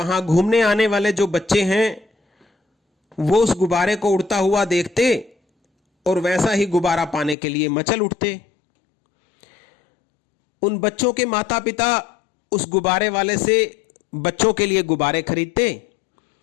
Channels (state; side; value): drops out; right; at 7.4 s